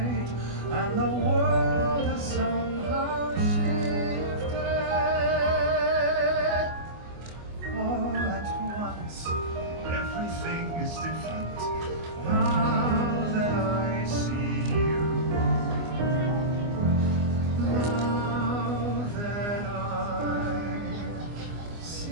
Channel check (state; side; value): late; left; 24 ms